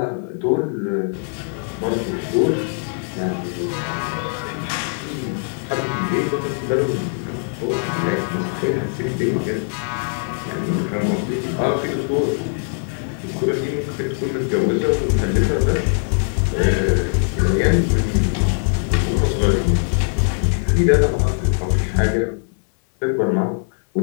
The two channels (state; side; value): silent; right; 65 dB below the other